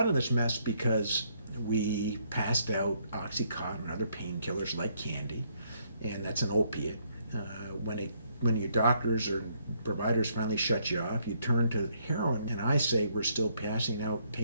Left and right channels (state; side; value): inverted; both; correlation -0.71